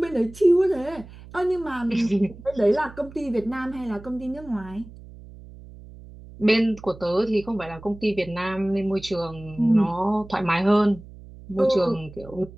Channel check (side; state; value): right; noise; hum, 18 dB below the sound